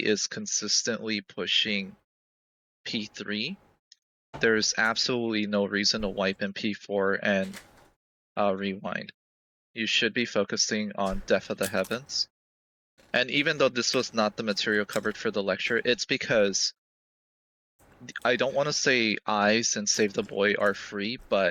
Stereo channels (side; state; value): both; identical; correlation 1.00